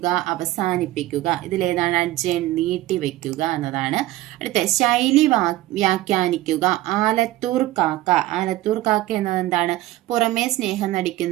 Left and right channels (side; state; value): left; quieter; 16.4 dB